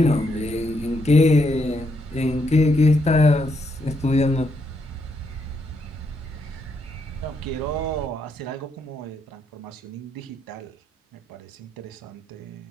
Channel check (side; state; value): both; normal; correlation 0.78